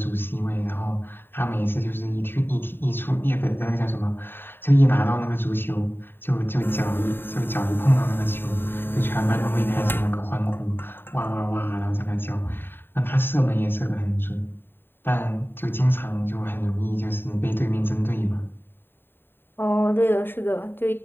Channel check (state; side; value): late; right; 0.10 ms